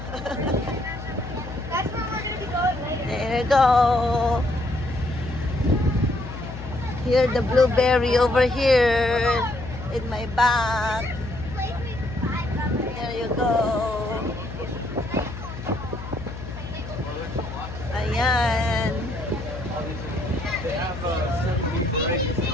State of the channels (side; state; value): left; noise; hum, 10 dB below the sound